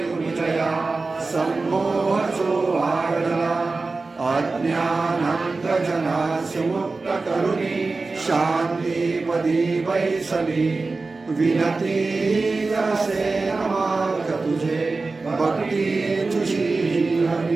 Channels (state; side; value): quieter; left; 3.7 dB